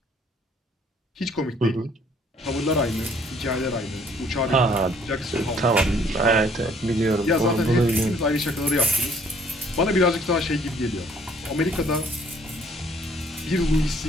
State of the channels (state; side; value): normal; both; correlation 0.60